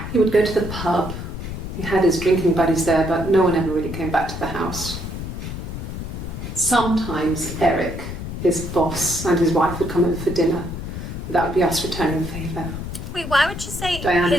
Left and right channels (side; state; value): left; noise; rumble, 7 dB below the sound